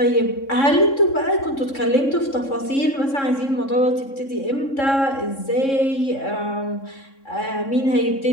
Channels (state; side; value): late; right; 3.6 ms